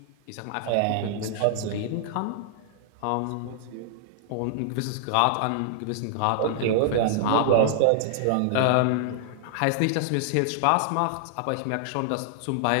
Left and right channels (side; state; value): both; different; correlation -0.01